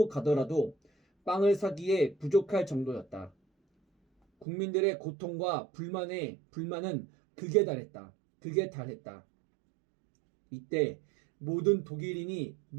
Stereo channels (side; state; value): left; drops out; at 4.5 s